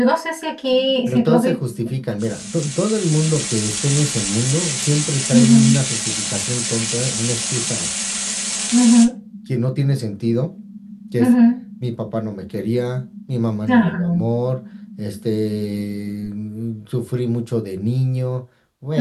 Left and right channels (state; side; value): identical; both; correlation 1.00